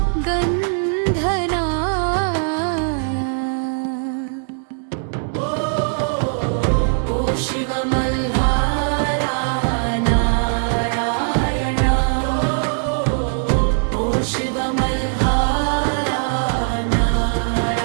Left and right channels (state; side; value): silent; left; 62 dB below the other